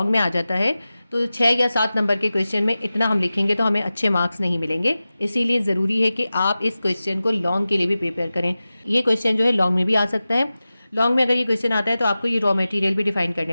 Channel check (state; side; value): inverted; both; correlation -0.95